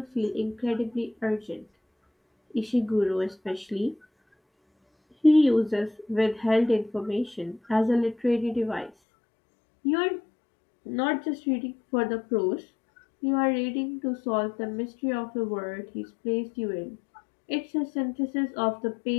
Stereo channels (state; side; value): drops out; right; at 8.9 s